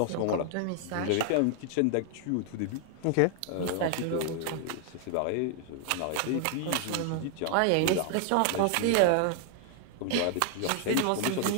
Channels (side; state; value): both; different; correlation 0.00